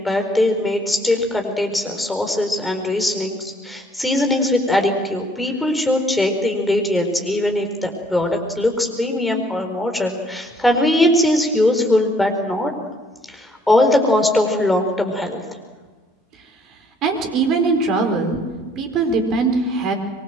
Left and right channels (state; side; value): normal; both; correlation 0.62